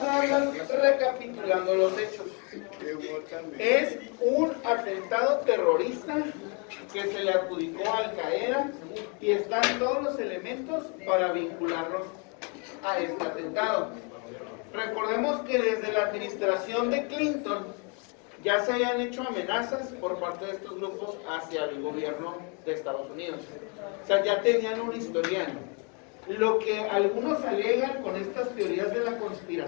a ir recapitulando los hechos. Es un atentado terrorista que se le adjudicó a Al Qaeda y están todos los elementos para vincularlos a este atentado. Recordemos que desde la administración de Clinton ya se habían hecho amenazas por parte de estos grupos hacia el gobierno de Estados Unidos. O sea, ya tenían un historial. Lo que algunos alegan con estas teorías de la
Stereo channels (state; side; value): quieter; right; 35.7 dB